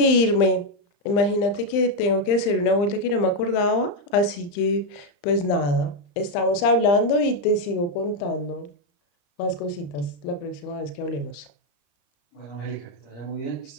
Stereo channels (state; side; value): late; right; 35 ms